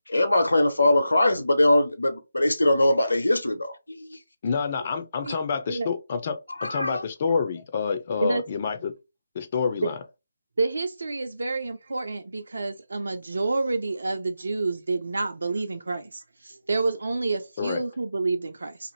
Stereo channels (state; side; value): inverted; both; correlation -0.88